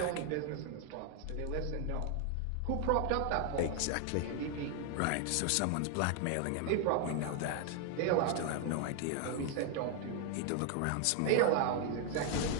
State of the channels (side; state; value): both; different; correlation 0.00